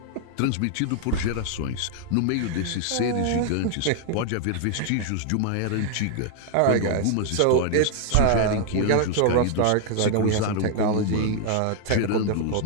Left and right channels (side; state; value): both; different; correlation 0.00